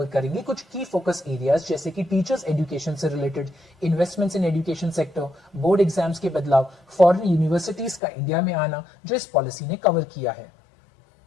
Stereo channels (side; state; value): right; drops out; at 8.0 s